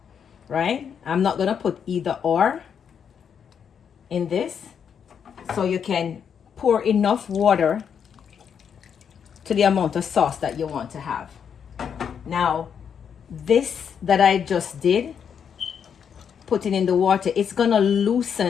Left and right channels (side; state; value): right; quieter; 7.5 dB